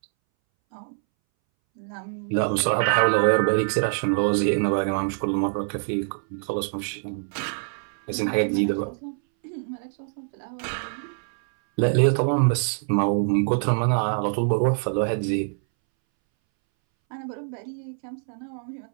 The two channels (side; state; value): left; silent; 61 dB below the other